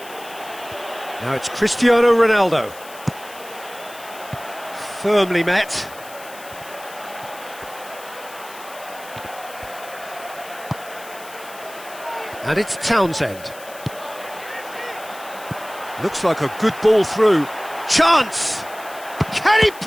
Now it's Cristiano Ronaldo. Firmly met. And it's Townsend. Looks like a good ball through. Chance! Can he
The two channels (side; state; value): left; noise; hiss, 18 dB below the sound